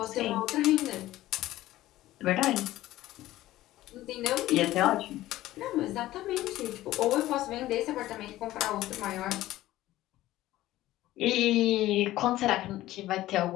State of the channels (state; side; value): quieter; right; 15.5 dB